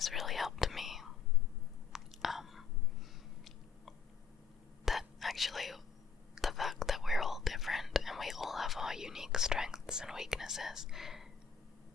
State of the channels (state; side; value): quieter; right; 5.8 dB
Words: really helped me. That actually, the fact that we're all different and we all have our unique strengths and weaknesses